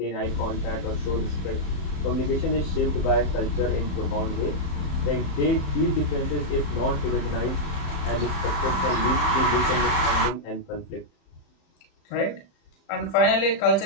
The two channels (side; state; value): right; late; 34 ms